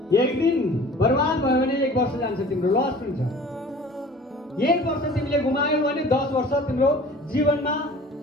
एक दिन बर्बाद भयो भने 1 वर्ष जान्छ, तिम्रो लस हुन्छ। 1 वर्ष तिमीले गुमायौ भने 10 वर्ष तिम्रो जीवनमा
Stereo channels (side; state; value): both; normal; correlation 0.45